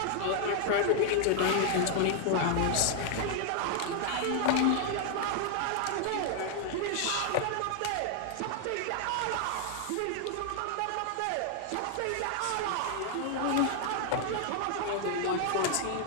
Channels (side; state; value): both; different; correlation 0.00